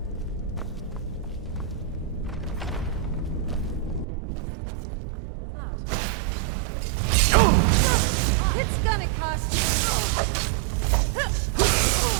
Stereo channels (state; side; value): drops out; left; at 4.0 s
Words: What was that? It's gonna cost you.